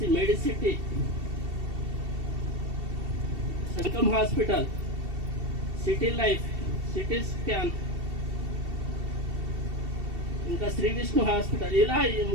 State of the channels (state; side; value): late; left; 2.7 ms